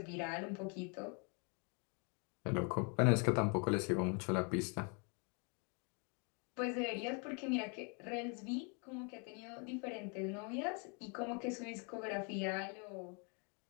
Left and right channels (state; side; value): quieter; right; 35.8 dB